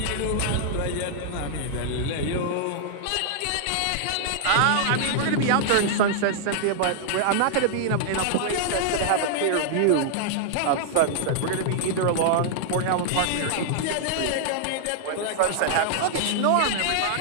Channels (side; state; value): both; different; correlation -0.01